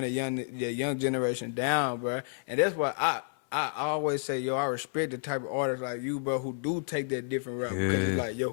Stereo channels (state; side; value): silent; right; 58 dB below the other